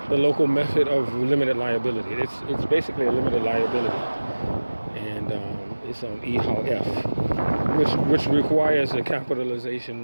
method of limited liability. It's basically a limited liability, and it's on EHOW-F, which requires a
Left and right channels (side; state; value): both; inverted; correlation -1.00